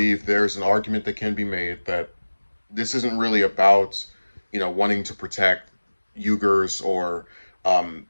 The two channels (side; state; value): both; inverted; correlation -1.00